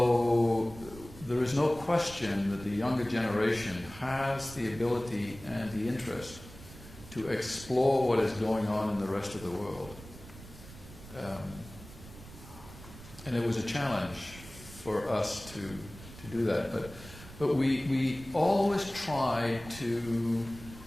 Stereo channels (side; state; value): right; noise; rumble, 17 dB below the sound